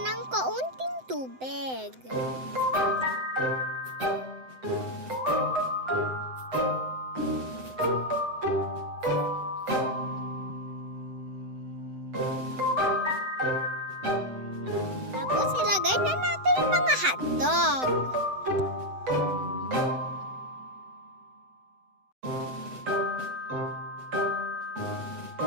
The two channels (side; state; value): left; late; 7.8 ms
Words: kaunting tubig. Tapos ilagay na natin yung mga hotdog.